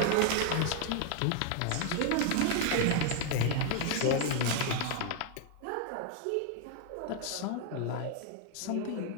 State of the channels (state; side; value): different; both; correlation 0.00